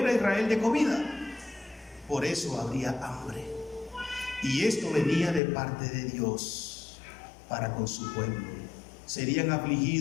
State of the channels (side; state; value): right; drops out; at 5.4 s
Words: a Israel de comida. Por eso habría hambre. Y esto venía de parte de Dios para con su pueblo. Serían